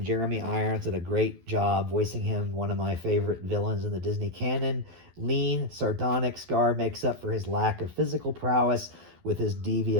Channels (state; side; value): late; left; 12 ms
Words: Jeremy Irons did a great job voicing him, one of my favorite villains in the Disney canon. Lean, sardonic Scar makes up for his lack of physical prowess with his